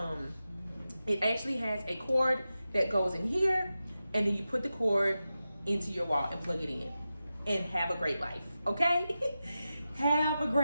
it actually has a cord that goes in here, and then you put the cord into your wall and plug it in, and have a great life. Okay. Have a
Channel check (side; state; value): both; inverted; correlation -0.92